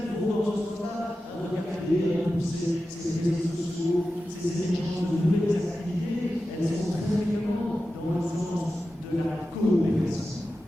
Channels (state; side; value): normal; both; correlation 0.93